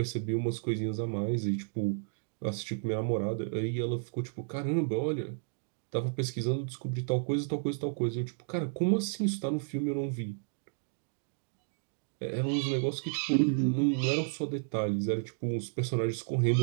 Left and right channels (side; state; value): left; silent; digital silence